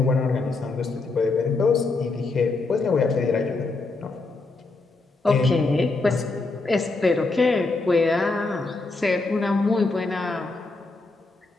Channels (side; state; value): right; quieter; 3.6 dB